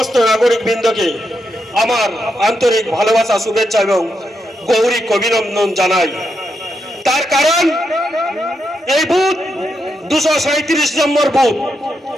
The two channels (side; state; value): both; normal; correlation 0.83